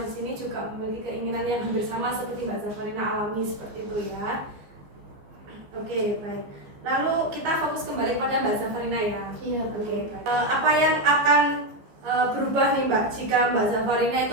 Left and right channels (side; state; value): left; late; 15 ms